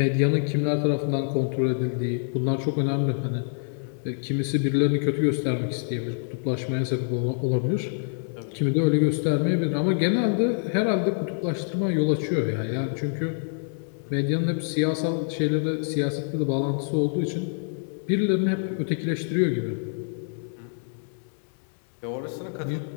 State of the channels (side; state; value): right; silent; digital silence